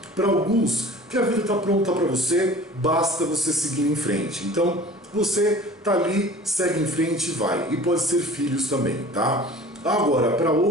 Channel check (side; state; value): both; normal; correlation 0.43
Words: Para alguns, que a vida está pronta para você, basta você seguir em frente. Então, você está ali, segue em frente e vai. E pode ser filhos também, tá? Agora, para